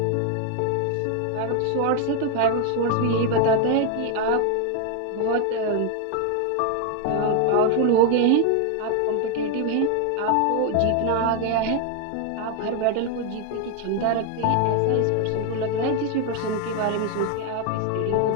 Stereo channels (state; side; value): different; both; correlation 0.01